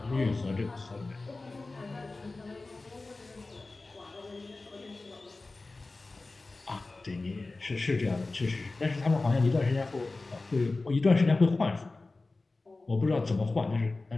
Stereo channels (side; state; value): right; quieter; 3.4 dB